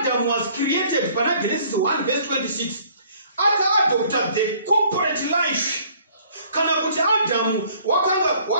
was created pana Genesis 1 verse 26 aka-adopta the corporate life. Kana kuti Adamu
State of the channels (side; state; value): both; inverted; correlation -0.58